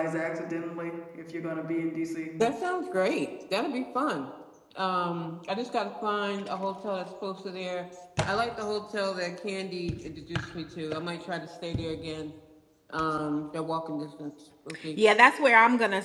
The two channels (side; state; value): both; identical; correlation 1.00